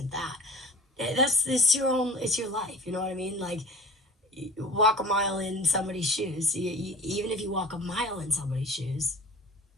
that. It's your life. You know what I mean? Like, you walk a mile in somebody's shoes. Even if you walk a mile in somebody's shoes,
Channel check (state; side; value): normal; both; correlation 0.39